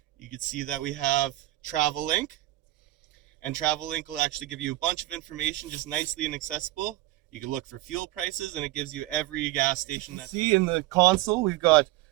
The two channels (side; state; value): left; quieter; 17.2 dB